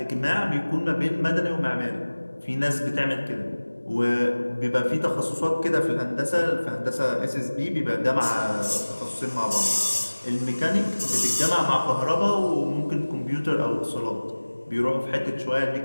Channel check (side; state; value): both; inverted; correlation -1.00